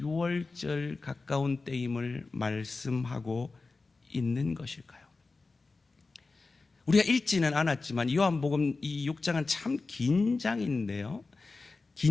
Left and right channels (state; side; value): quieter; right; 3.8 dB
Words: 6월절 가까운 때임을 말씀하고 있는 것일까요? 우리가 읽지는 않았지만 요한복음 이 6장은 참 긴 장인데요,